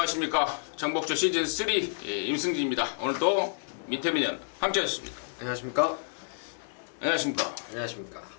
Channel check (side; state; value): right; silent; digital silence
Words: 정복조 시즌3 임승진입니다. 오늘도 민태민연 함께 하셨습니다. 안녕하십니까? 안녕하십니까. 안녕하십니까?